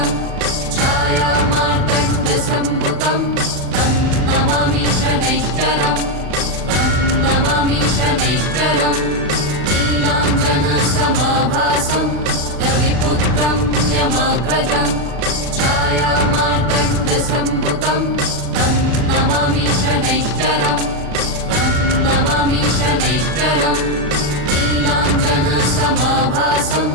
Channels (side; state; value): left; late; 40 ms